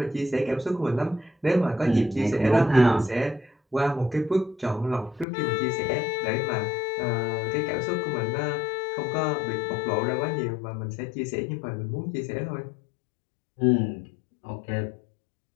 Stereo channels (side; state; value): right; drops out; at 5.2 s